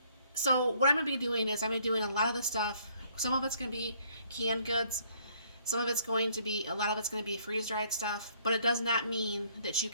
so what I'm going to be doing is I'm going to be doing a lot of the stuff. Some of it's going to be canned goods. Some of it's going to be, a lot of it's going to be freeze-dried stuff. But it does not mean that you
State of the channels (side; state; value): both; inverted; correlation -0.64